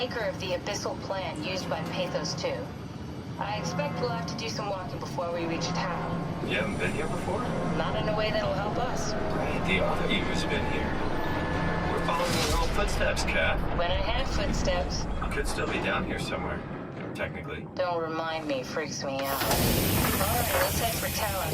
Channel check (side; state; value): both; identical; correlation 1.00